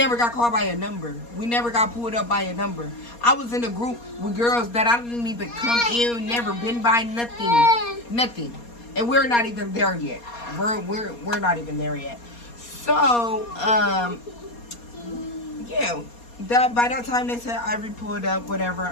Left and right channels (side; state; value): right; late; 4.2 ms